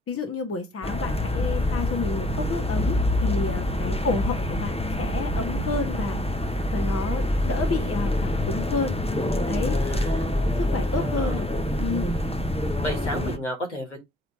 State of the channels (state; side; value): normal; both; correlation 0.63